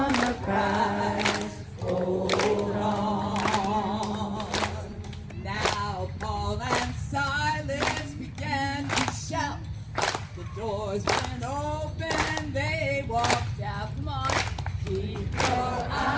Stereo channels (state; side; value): identical; both; correlation 1.00